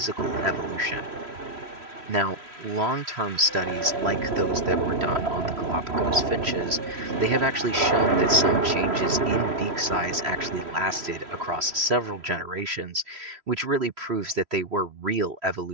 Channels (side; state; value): left; late; 3.1 ms